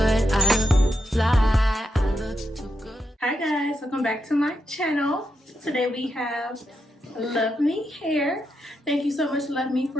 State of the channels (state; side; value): normal; both; correlation 0.83